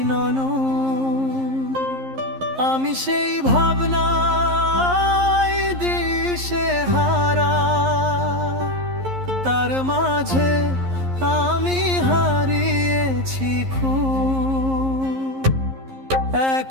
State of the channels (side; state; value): left; late; 11 ms